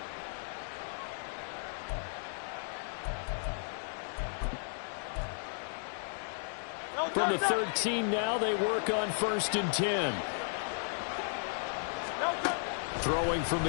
From the 13 now, they work on 1st and 10. Throwing from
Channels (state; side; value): silent; right; digital silence